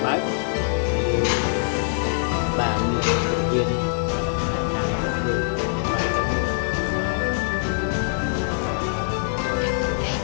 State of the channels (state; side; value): silent; right; digital silence